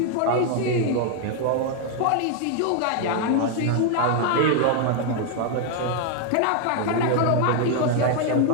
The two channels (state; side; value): different; both; correlation 0.00